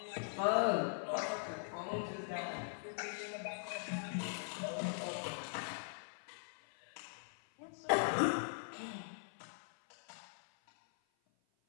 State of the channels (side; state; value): right; silent; 50 dB below the other